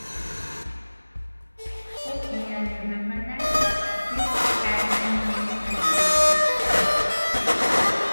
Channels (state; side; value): inverted; both; correlation -1.00